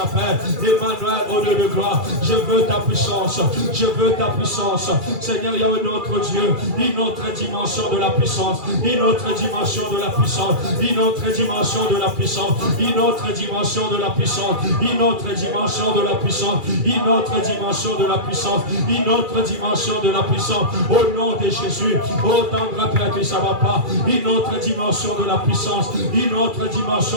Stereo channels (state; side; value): late; left; 2.4 ms